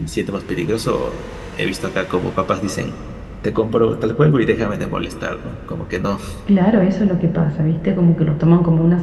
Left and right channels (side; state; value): both; identical; correlation 1.00